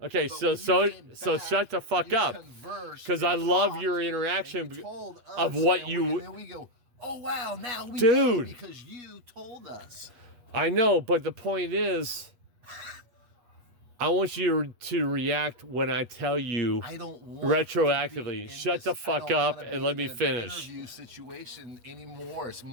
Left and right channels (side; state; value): left; late; 8.3 ms